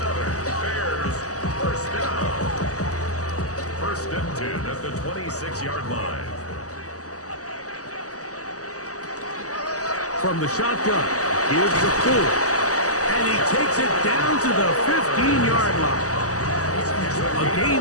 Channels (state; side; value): late; right; 0.66 ms